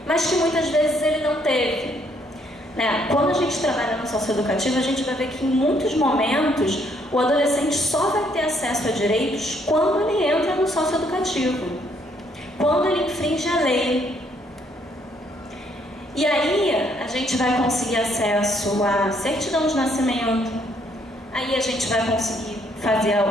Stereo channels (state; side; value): normal; both; correlation 0.69